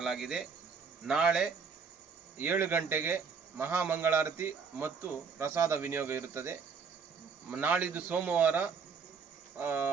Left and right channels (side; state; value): left; quieter; 5.6 dB